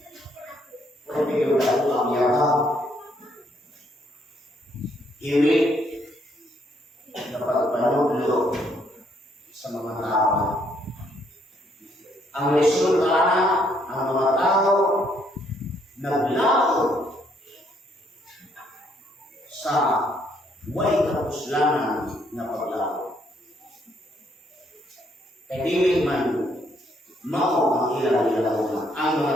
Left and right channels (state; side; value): normal; both; correlation 0.70